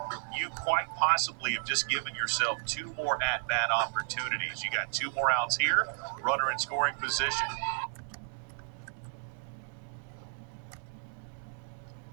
you quite possibly have just given yourself 2 more at-bat opportunities. You got 2 more outs here, runner in scoring position.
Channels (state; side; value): silent; left; 56 dB below the other